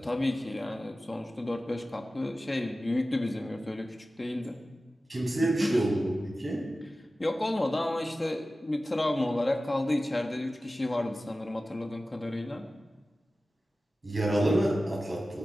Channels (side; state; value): both; normal; correlation 0.95